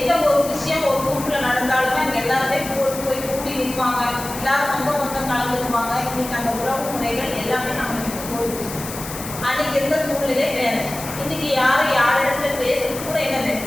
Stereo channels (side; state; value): left; noise; hiss, 10 dB below the sound